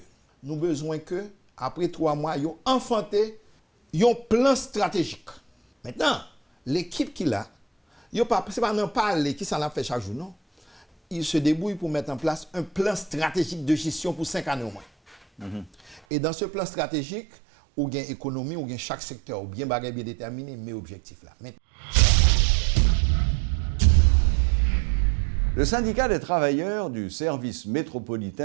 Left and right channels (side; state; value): left; drops out; at 16.0 s